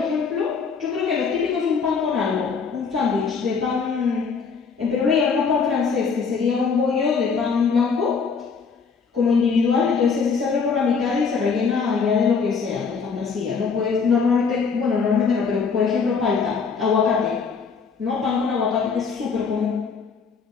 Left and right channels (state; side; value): quieter; right; 5.5 dB